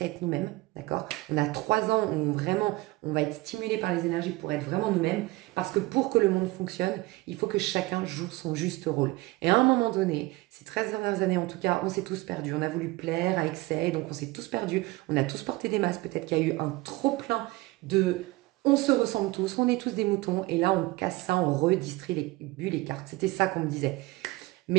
à être nous-mêmes, d'accord? On a 3 ans où on va être stimulé par les énergies pour être vraiment nous-mêmes, parce que pour que le monde fonctionne, il faut que chacun joue son juste rôle. Et à un moment donné, ces 13 dernières années en tout cas, on s'est tous perdus, on a voulu plaire à excès, donc on s'est tous perdus, on a tous porté des masques, peut-être qu'il y a eu un trop-plein de... On se ressemble tous, on est tous des moutons, et là on casse ça, on redistribue les cartes. C'était ça qu'on me disait.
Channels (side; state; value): left; quieter; 20.8 dB